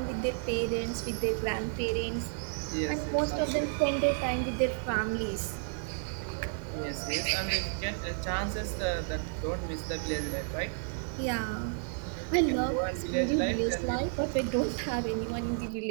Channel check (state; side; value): silent; left; 57 dB below the other